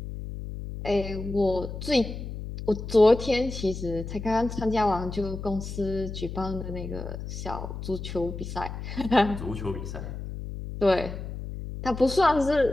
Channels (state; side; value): noise; left; hum, 8 dB below the sound